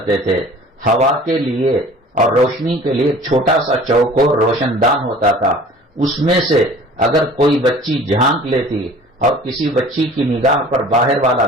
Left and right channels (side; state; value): both; normal; correlation 0.47